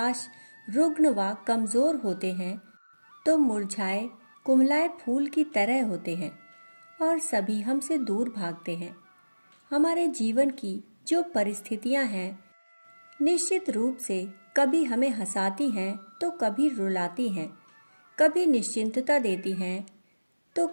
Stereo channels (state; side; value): inverted; both; correlation -1.00